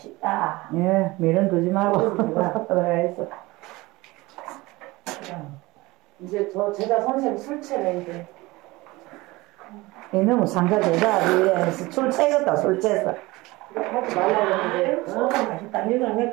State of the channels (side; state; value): left; quieter; 21.2 dB